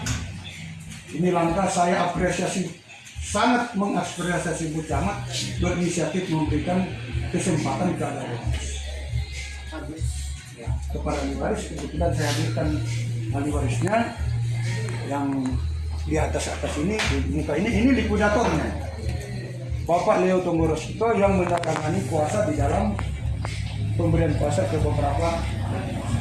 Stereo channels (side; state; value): both; identical; correlation 1.00